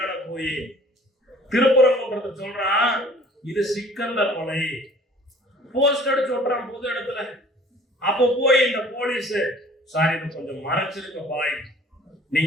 போய் திருப்பரங்குன்றத்தை சொல்றான், இது சிக்கந்தர் மலை. போஸ்ட் அடிச்சு ஓட்டுறான் பொது இடத்துல. அப்ப போய் இந்த போலீஸ், சாரி இது கொஞ்சம் மறைச்சிருக்க பாய்,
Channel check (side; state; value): both; normal; correlation 0.51